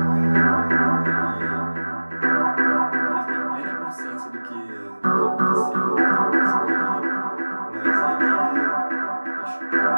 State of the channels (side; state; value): both; inverted; correlation -1.00